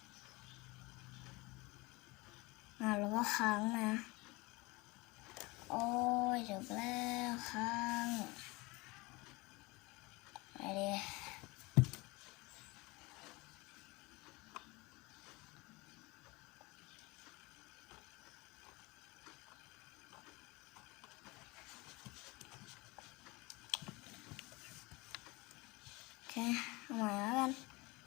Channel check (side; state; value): right; quieter; 24.0 dB